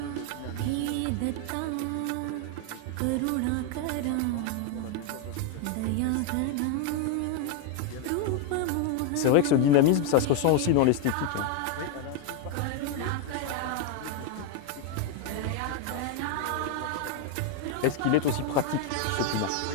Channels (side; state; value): both; different; correlation 0.01